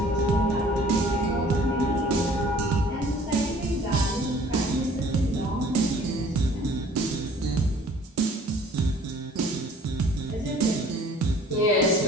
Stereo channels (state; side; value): normal; both; correlation 0.52